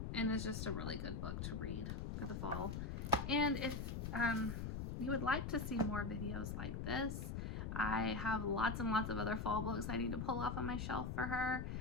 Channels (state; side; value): noise; left; rumble, 3 dB below the sound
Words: and is just a really good book to read for the fall. And if you would like to see more videos like this, I have lots and lots of other fall books I need to pull off on my shelf for her.